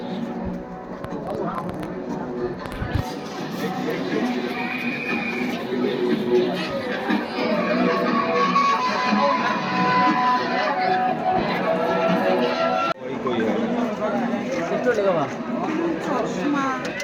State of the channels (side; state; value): both; identical; correlation 1.00